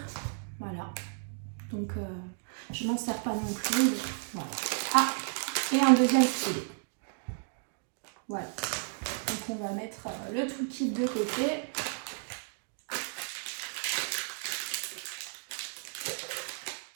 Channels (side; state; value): left; silent; digital silence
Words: voilà. Donc je m'en sers pas non plus. Voilà. Ah, et un deuxième stylet. Voilà. Donc on va mettre le toolkit de côté.